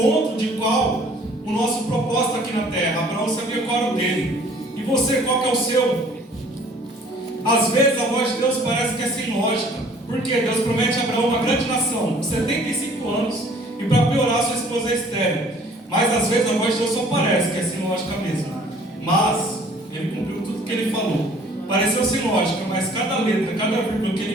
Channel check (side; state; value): both; normal; correlation 0.55